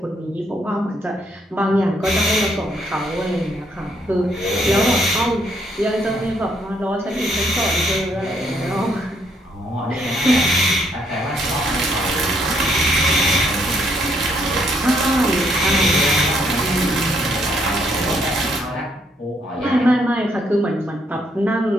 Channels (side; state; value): both; normal; correlation 0.71